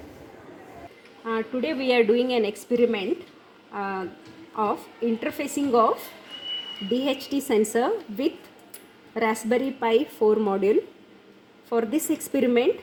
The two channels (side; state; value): both; identical; correlation 1.00